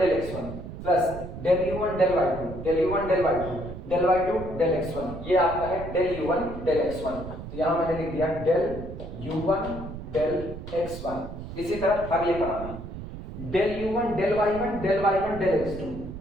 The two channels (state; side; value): noise; right; rumble, 10 dB below the sound